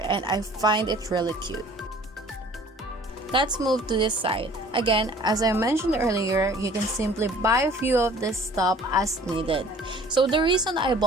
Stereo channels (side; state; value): both; normal; correlation 0.51